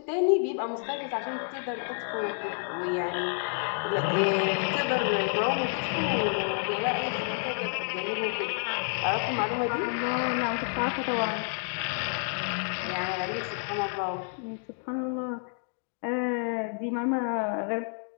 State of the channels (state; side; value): silent; right; 58 dB below the other